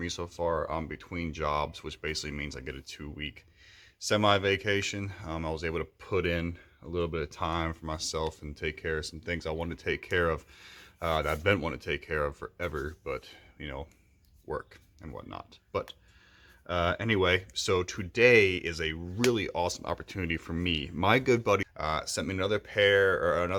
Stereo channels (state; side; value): identical; both; correlation 1.00